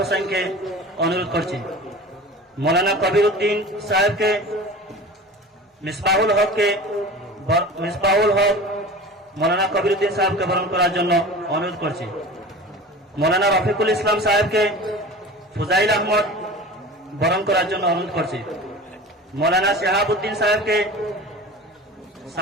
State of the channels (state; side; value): normal; both; correlation 0.36